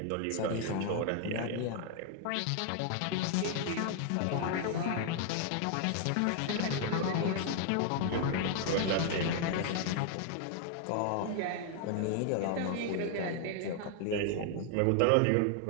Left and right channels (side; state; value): both; different; correlation 0.00